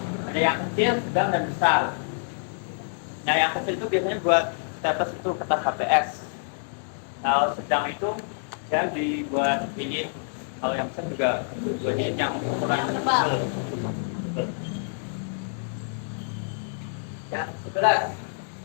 Ada yang kecil, sedang, dan besar. Nah, yang kecil itu biasanya buat staples itu kertas HPS. Kalau sedang itu ya dibuat jilid. Kalau yang besar juga buat jilid yang ukuran tebal. Yang 11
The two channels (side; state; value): right; silent; digital silence